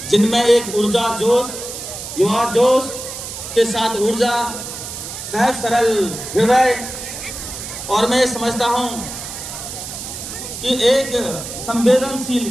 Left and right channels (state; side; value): noise; right; hiss, 9 dB below the sound